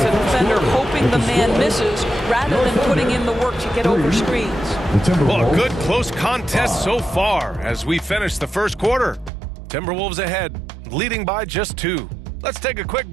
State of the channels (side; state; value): left; drops out; at 9.3 s